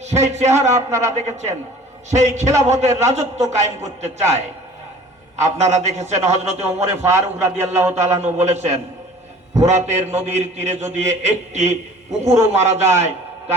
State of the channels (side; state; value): both; normal; correlation 0.47